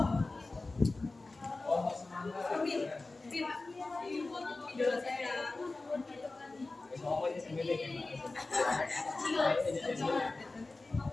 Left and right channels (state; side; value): quieter; right; 3.3 dB